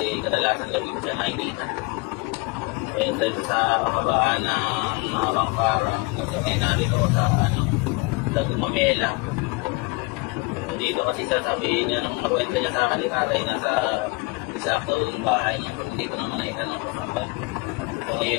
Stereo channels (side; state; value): right; quieter; 26.4 dB